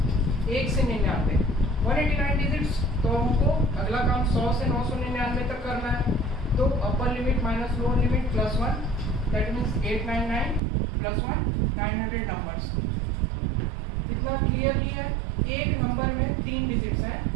1 से 99 189 डिजिट्स। तो हमको अगला काम 100 से 999 तक करना है। तो अपर limit minus lower limit plus 1, that means 899 plus 1 900 numbers. इतना क्लियरली है। एक नंबर में 3 डिजिट्स हैं,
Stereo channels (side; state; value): left; drops out; at 10.6 s